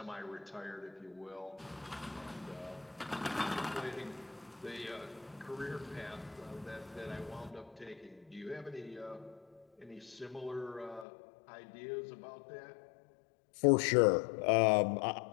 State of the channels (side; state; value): right; drops out; at 11.1 s